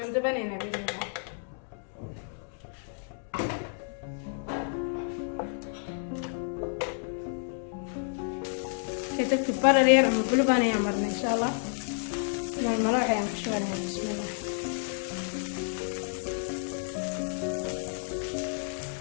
بنينا بإذن الله. تكتب برا رير ومقلوب أنا يعمرنا إن شاء الله. مع المراعي يعني شو بسم الله.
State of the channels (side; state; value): right; silent; 58 dB below the other